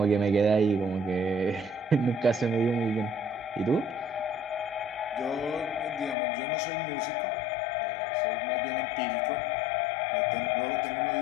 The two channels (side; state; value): right; drops out; at 6.2 s